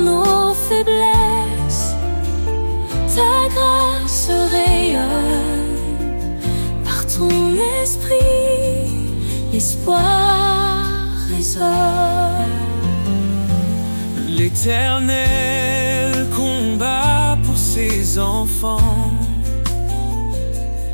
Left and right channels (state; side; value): inverted; both; correlation -1.00